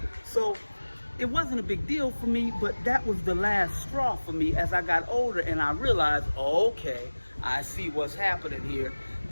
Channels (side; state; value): both; inverted; correlation -1.00